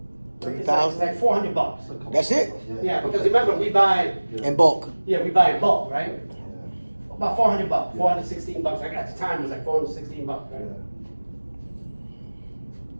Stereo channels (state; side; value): inverted; both; correlation -1.00